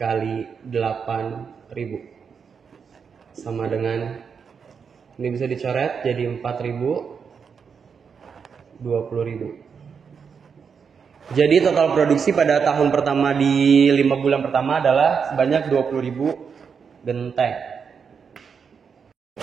8.000 sama dengan, ini bisa dicoret jadi 4.000, 20.000. Jadi total produksi pada tahun pertama di 5 bulan pertama adalah sebanyak 20.000 genteng.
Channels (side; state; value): left; quieter; 6.3 dB